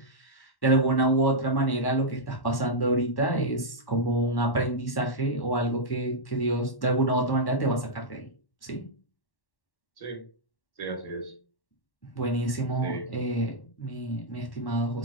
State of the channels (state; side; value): late; right; 1.1 ms